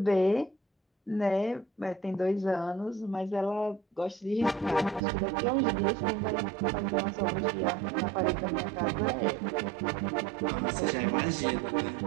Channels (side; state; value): left; drops out; at 5.0 s